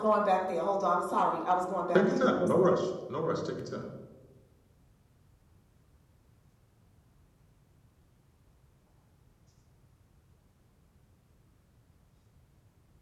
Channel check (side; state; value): both; identical; correlation 1.00